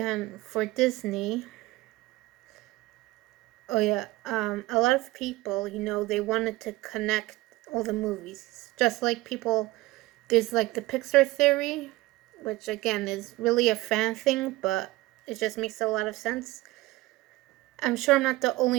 for Disney, a lot of people, they wanted to connect all the movies. Just like people, there's the Pixar theory, which again is really a fan thing, but it just makes a lot of sense. I'm sure I'm not the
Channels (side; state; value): left; quieter; 19.2 dB